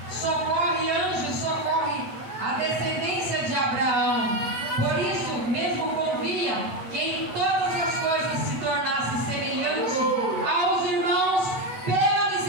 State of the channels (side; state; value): left; late; 9.0 ms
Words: socorre anjos, socorre a descendência de Abraão. Por isso mesmo convia que em todas as coisas se tornasse semelhante aos irmãos pela